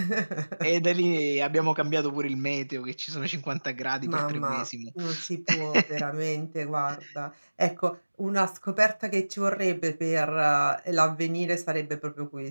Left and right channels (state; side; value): inverted; both; correlation -1.00